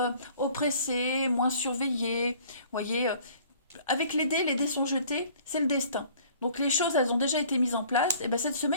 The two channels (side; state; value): both; inverted; correlation -0.53